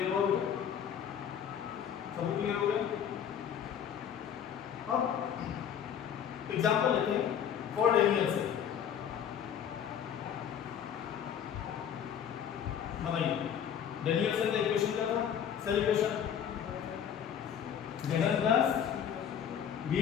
हो गया? सब क्लियर हो गया? अब एग्जांपल लेते हैं फॉर डेनियल से। बताइए डेनियल से का इक्वेशन क्या था? Cell equation Zn plus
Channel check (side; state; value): right; quieter; 8.7 dB